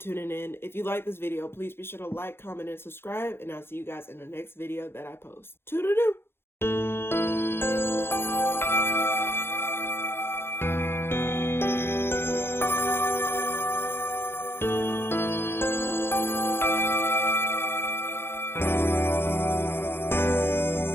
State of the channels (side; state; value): right; late; 0.11 ms